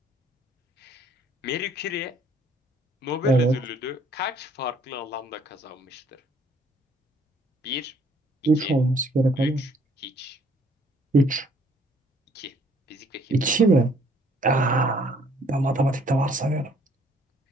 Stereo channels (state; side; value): normal; both; correlation 0.62